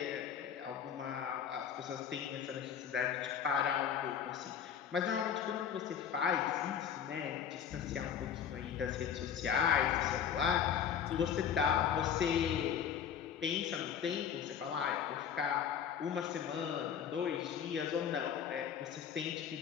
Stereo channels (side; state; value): right; quieter; 8.3 dB